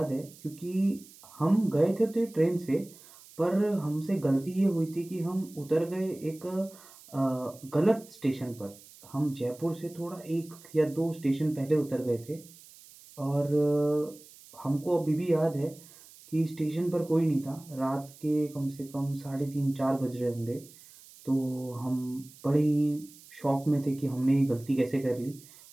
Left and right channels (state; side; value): noise; right; hiss, 22 dB below the sound